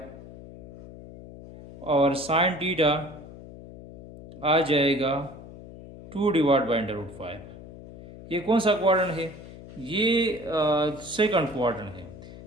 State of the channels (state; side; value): noise; left; hum, 16 dB below the sound